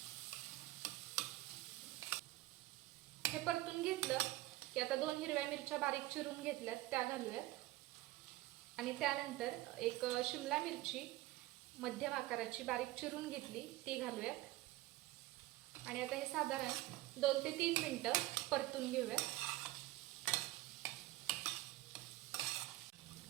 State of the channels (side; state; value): left; quieter; 18.0 dB